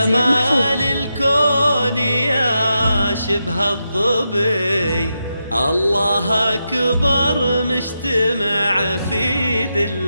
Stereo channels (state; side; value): inverted; both; correlation -0.86